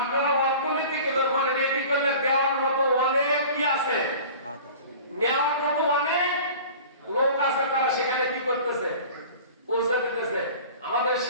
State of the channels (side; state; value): both; inverted; correlation -0.41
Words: অর্থনৈতিক মানে রেডি করলে দেওয়ার মতো অনেক কি আছে, নেওয়ার মতো অনেক লোক আছে, তারা সেখানে কি করতেছে? পৌঁছে দিতেছে। আমাদের